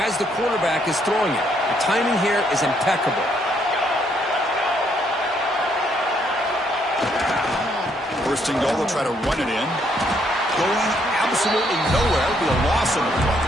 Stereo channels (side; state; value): both; normal; correlation 0.71